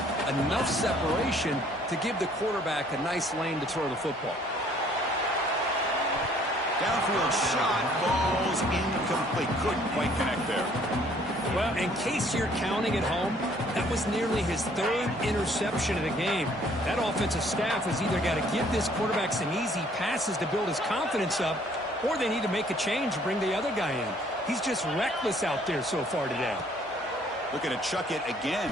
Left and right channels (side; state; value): both; normal; correlation 0.60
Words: enough separation to give the quarterback a nice lane to throw the football. Downfield shot falls incomplete. Couldn't quite connect there. Well, in case you're counting at home, that was nearly his 3rd interception of the game. That offensive staff has either got to give this quarterback some easy passes to build his confidence up, or they need to make a change and bring the other guy in. He's just reckless out there so far today. Looking to chuck it again.